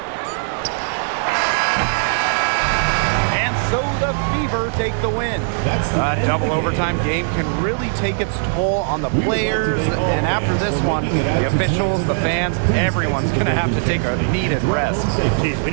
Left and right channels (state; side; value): silent; left; digital silence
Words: And so the Fever take the win. A double overtime game can really take its toll on the players. And after this one, the officials, the fans, everyone's going to have to take a needed rest. Geez, we